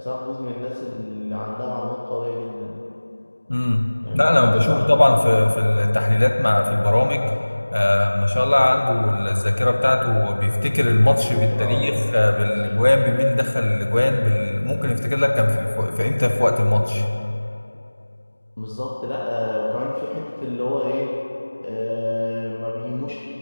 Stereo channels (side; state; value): both; inverted; correlation -1.00